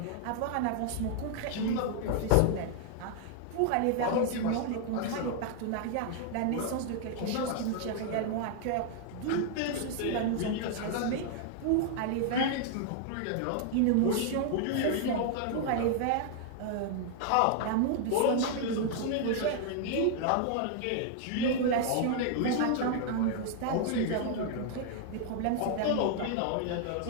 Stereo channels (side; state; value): both; different; correlation 0.00